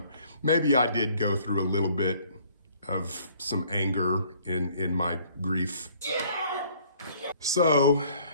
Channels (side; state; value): both; inverted; correlation -0.58